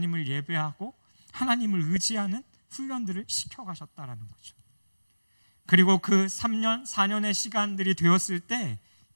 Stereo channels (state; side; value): inverted; both; correlation -1.00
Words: 예배하고 하나님을 의지하는 훈련들을 시켜가셨다라는 거죠. 그리고 그 3년, 4년의 시간들이 되었을 때